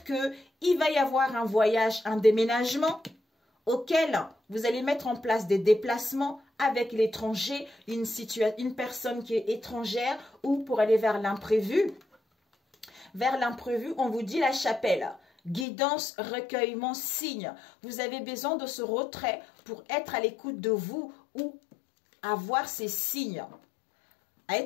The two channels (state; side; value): drops out; right; at 15.7 s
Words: qu'il va y avoir un voyage, un déménagement auquel vous allez mettre en place des déplacements avec l'étranger, une personne qui est étrangère ou pour aller vers l'imprévu. Vers l'imprévu, on vous dit la chapelle. Guidance, recueillement, signe. Vous avez besoin de ce retrait pour être à l'écoute de vous ou avoir ces signes. À